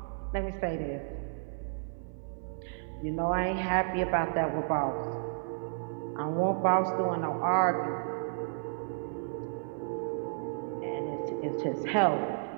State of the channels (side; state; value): left; silent; 56 dB below the other